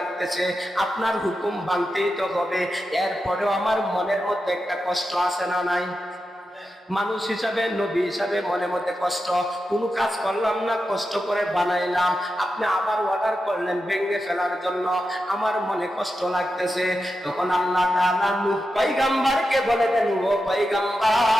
আপনার হুকুম মানতেই তো হবে। এরপরেও আমার মনের মধ্যে একটা কষ্ট আছে না নাই? মানুষ হিসাবে, নবী হিসাবে মনের মধ্যে কষ্ট। কোনো কাজ করলাম না, কষ্ট করে বানাইলাম, আপনি আবার অর্ডার করলেন ভেঙে ফেলার জন্য, আমার মনে কষ্ট লাগতেছে। তখন আল্লাহ তাআলা নূহ পয়গম্বরকে বলে দেন, ও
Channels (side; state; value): both; normal; correlation 0.89